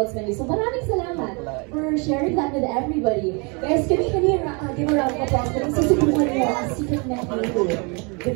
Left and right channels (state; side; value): quieter; left; 32.1 dB